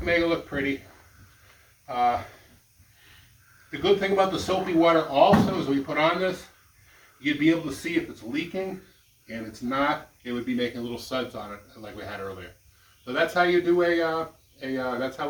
make it look pretty. The good thing about the soapy water also is when you put on this, you'd be able to see if it's leaking, and it's not, it would be making little suds on it like we had earlier. So that's how you do that's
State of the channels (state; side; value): identical; both; correlation 1.00